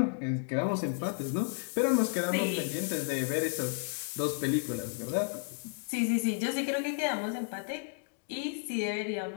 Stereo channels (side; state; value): right; silent; 56 dB below the other